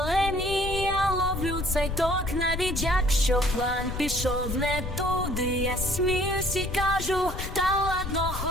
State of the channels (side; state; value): left; noise; rumble, 6 dB below the sound